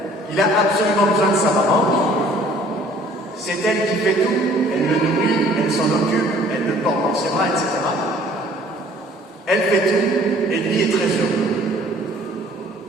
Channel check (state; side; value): normal; both; correlation 0.55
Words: il a absolument besoin de sa maman. C'est elle qui fait tout, elle le nourrit, elle s'en occupe, elle le porte dans ses bras, etc. Elle fait tout, et lui est très heureux.